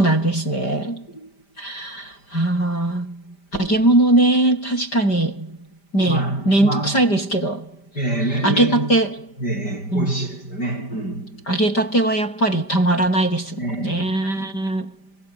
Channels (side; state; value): right; late; 5.1 ms